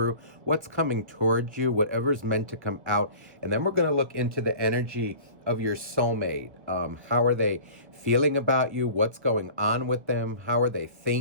what's coming towards you, whatever's meant to come out. And then we're going to look into the energy of your soulmate. How are they feeling about you? What's going on with them? How are they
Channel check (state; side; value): late; left; 1.3 ms